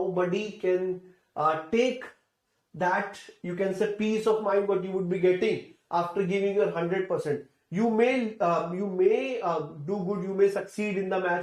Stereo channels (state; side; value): identical; both; correlation 1.00